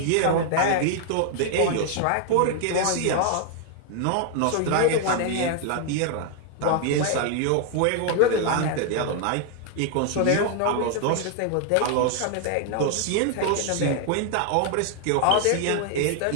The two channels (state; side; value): different; both; correlation 0.00